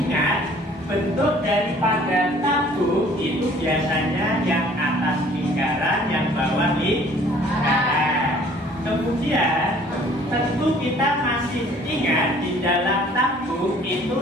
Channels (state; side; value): normal; both; correlation 0.55